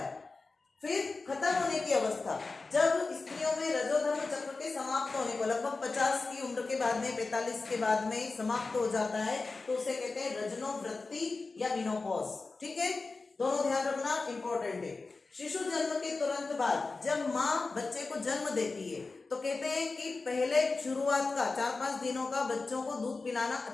फिर खत्म होने की अवस्था, जब स्त्रियों में रजोधर्म चक्र के समाप्त होने को लगभग 50 की उम्र के बाद में, 45 के बाद में समाप्त हो जाता है, तो उसे कहते हैं रजनोवृत्ति या मिनोपॉज। ठीक है, दोनों ध्यान रखना, इंपॉर्टेंट है। शिशु जन्म के तुरंत बाद जब माँ बच्चे को जन्म देती है, तो कहते हैं कि पहले शुरुआत का 4-5 दिनों का बच्चों को दूध पिलाना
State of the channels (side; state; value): right; quieter; 3.8 dB